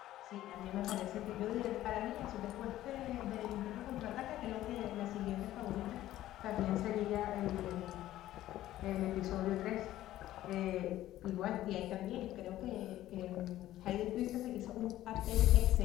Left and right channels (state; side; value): quieter; right; 14.1 dB